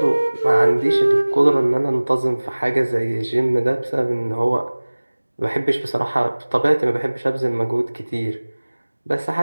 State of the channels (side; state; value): both; inverted; correlation -1.00